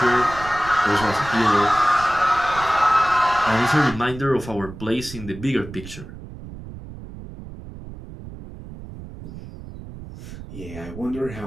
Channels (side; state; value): right; noise; rumble, 13 dB below the sound